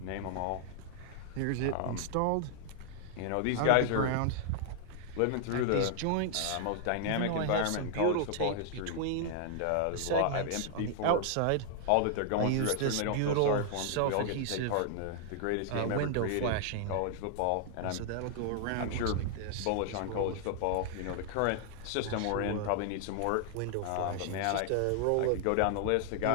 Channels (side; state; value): both; different; correlation -0.01